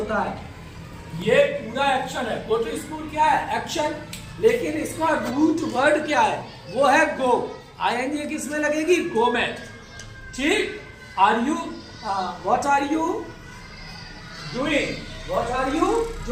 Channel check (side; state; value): both; identical; correlation 1.00